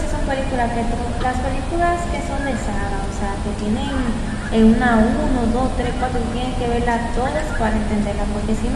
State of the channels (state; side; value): identical; both; correlation 1.00